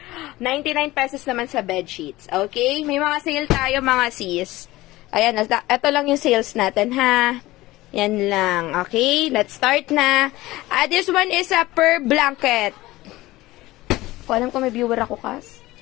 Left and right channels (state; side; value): quieter; right; 18.3 dB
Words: 99 pesos naman sa bedsheets. Okay? May mga sale tayo mga sis. Ayan, ito lang yung sales natin ha. Yan lang. Okay? Let's start na. This one is a per blanket. Ko alam ko may viewer ako, Kas.